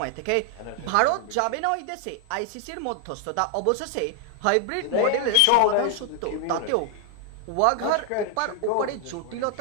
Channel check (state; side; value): different; both; correlation 0.00